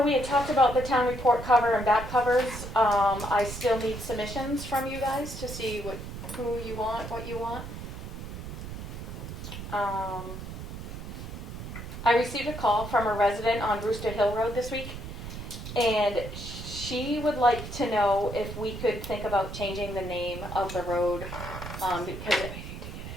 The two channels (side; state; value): right; noise; rumble, 9 dB below the sound